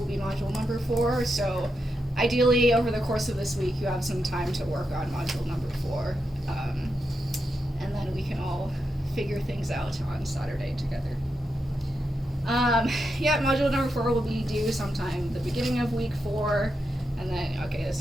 be module number 4, so ideally over the course of this week you have some time to work on module number 4, and then we can all figure things out on Saturday together. Module number 4 will be due sometime the beginning of week 4, and then, I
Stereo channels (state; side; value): normal; both; correlation 0.86